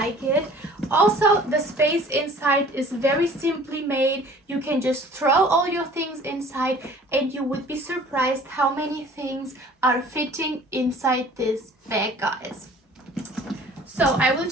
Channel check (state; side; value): normal; both; correlation 0.49